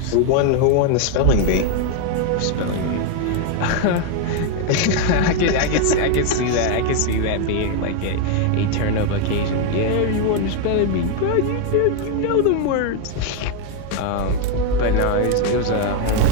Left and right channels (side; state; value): both; different; correlation 0.01